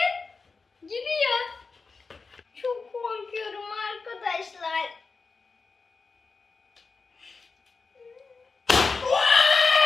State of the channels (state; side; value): quieter; right; 4.4 dB